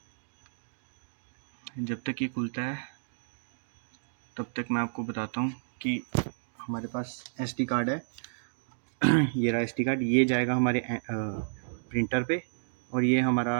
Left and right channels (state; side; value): silent; left; digital silence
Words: जब तक ये खुलता है तब तक मैं आपको बताता हूँ कि हमारे पास SD कार्ड है। ये रहा SD कार्ड, ये जाएगा हमारे प्रिंटर पे और ये हमारा